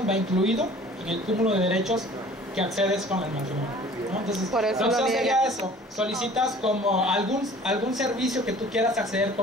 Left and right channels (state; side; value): normal; both; correlation 0.48